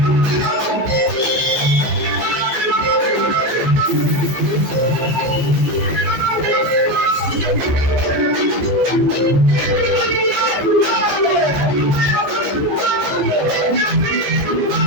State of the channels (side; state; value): left; late; 14 ms